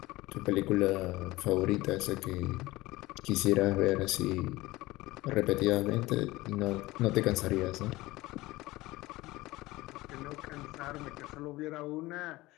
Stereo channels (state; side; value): quieter; right; 19.3 dB